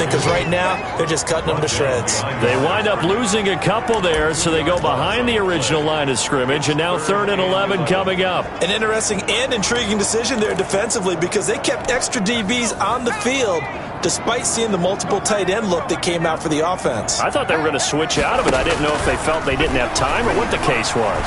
because right now they're just cutting them to shreds. They wind up losing a couple there, so they go behind the original line of scrimmage, and now 3rd and 11 coming up. An interesting and intriguing decision there defensively because they kept extra DBs on the field despite seeing the multiple tight end look that came out for the offense. I thought they were going to switch out of it. I didn't know if they felt they didn't have time or what the case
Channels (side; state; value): both; identical; correlation 1.00